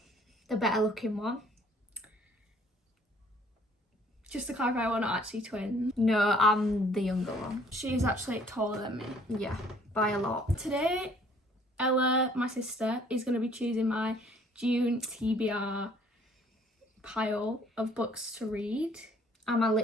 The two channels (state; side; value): normal; both; correlation 0.59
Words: The better looking one. Just to clarify, we're not actually twins. No, I'm the younger one. She's actually taller than me. Yeah, by a lot. Today, Ella, my sister, is going to be choosing my June TBR pile of books to read. And my